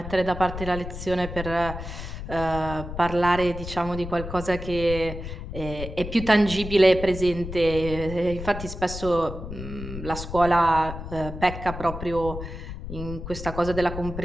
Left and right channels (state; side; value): noise; left; rumble, 9 dB below the sound